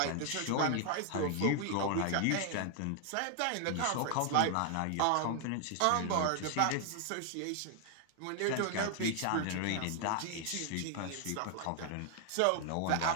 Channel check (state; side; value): different; both; correlation 0.00